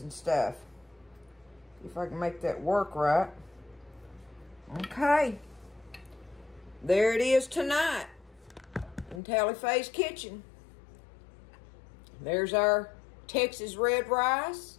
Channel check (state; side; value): drops out; right; at 9.2 s